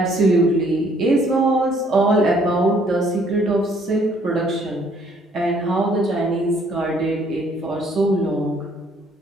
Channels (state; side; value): normal; both; correlation 0.63